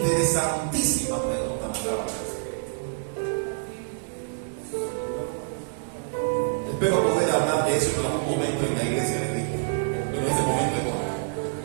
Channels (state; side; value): silent; left; digital silence